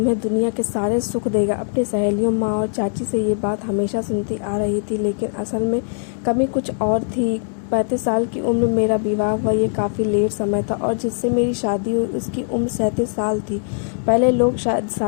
दुनिया के सारे सुख देगा। अपनी सहेलियों, माँ और चाची से ये बात हमेशा सुनती आ रही थी, लेकिन असल में कमी कुछ और थी। 35 साल की उम्र में मेरा विवाह हुआ, ये काफ़ी लेट समय था, और जिससे मेरी शादी हुई उसकी उम्र 37 साल थी। पहले लोग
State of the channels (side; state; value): right; silent; digital silence